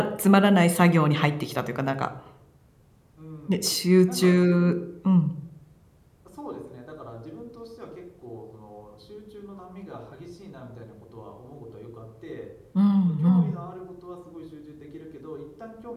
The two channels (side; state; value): both; identical; correlation 1.00